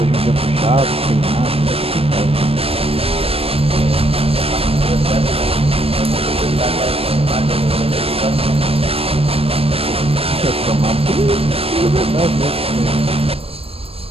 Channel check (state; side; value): late; left; 0.28 ms